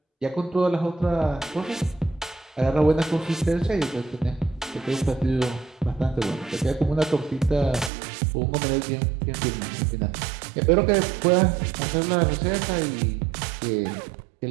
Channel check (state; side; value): drops out; left; at 7.9 s